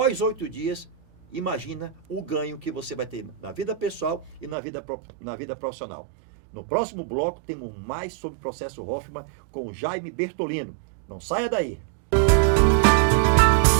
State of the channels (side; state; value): left; drops out; at 4.5 s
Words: 8 dias, imagina o ganho que você vai ter na vida pessoal e na vida profissional. No próximo bloco, temos mais sobre o processo Hoffman com o Jaime Bertolino. Não saia daí!